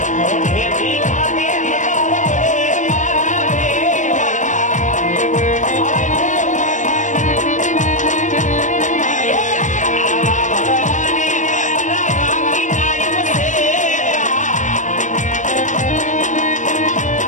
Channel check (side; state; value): right; late; 0.36 ms